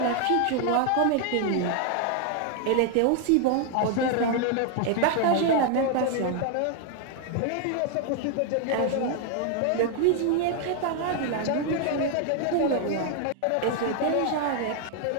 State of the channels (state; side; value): different; both; correlation 0.00